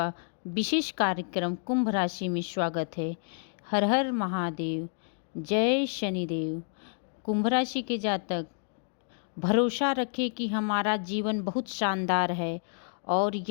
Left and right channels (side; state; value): right; silent; digital silence